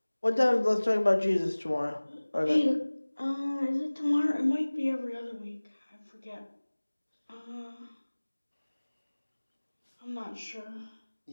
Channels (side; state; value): both; inverted; correlation -1.00